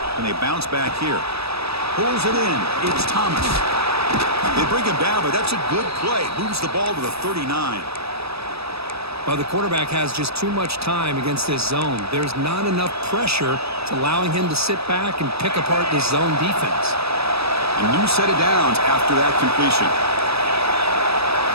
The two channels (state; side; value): late; left; 0.78 ms